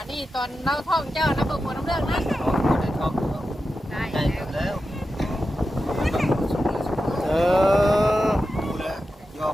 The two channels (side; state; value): both; normal; correlation 0.91